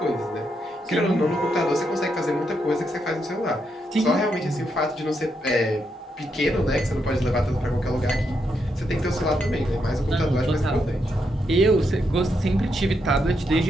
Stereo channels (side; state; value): both; normal; correlation 0.81